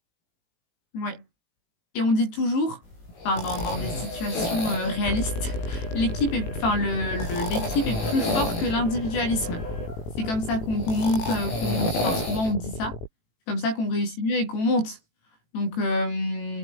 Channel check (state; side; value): late; right; 18 ms